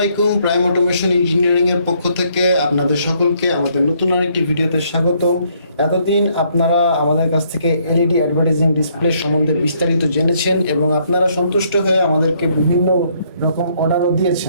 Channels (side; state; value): both; inverted; correlation -0.69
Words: প্রাইম অটোমেশন ইঞ্জিনিয়ারিং এর পক্ষ থেকে আপনাদের সকলকে আমাদের নতুন আরেকটি ভিডিওতে স্বাগত। এতদিন আপনারা আমাদের কাছ থেকে এলইডি অ্যাডভার্টাইজিং ডিসপ্লে সম্বন্ধে বিস্তারিত জেনেছেন এবং আপনারা সন্তুষ্ট হয়ে আমাদেরকে বিভিন্ন রকম অর্ডারও